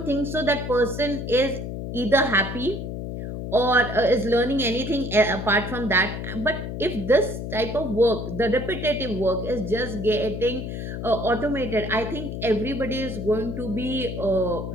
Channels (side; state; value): left; noise; hum, 6 dB below the sound